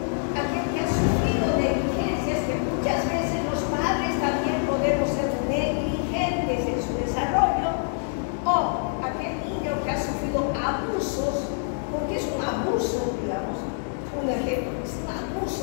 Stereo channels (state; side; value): silent; right; digital silence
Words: aquel que ha sufrido negligencias, que muchas veces los padres también podemos ser negligentes en su desarrollo, o aquel niño que ha sufrido abusos, porque es un abuso, digamos, un ejemplo, es un